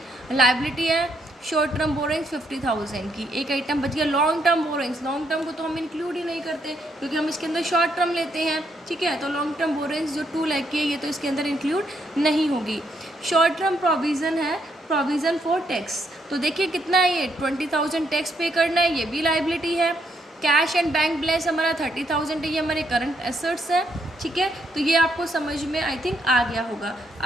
लायबिलिटी है। शॉर्ट टर्म बोरोइंग्स 50,000 की, एक आइटम बच गया long term borrowings. Long term को तो हम इंक्लूड ही नहीं करते क्योंकि हम इसके अंदर शॉर्ट टर्म लेते हैं, ठीक है। तो लॉन्ग टर्म बोरोइंग्स जो 2 लाख की है, ये तो इसके अंदर इंक्लूड नहीं होगी। शॉर्ट टर्म प्रोविज़न है, प्रोविज़न फॉर टैक्स, तो देखिए कितना है ये, 20,000 टैक्स पे करना है, ये भी लायबिलिटी है। कैश एंड बैंक बैलेंस हमारा 30,000 है, ये हमारे करंट एसेट्स है, ठीक है। तो ये आपको समझ में आई थिंक आ गया होगा।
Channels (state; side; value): normal; both; correlation 0.75